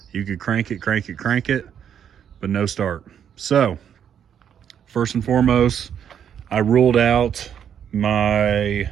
You could crank it, but no start. So first and foremost, I ruled out my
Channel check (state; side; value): quieter; left; 8.8 dB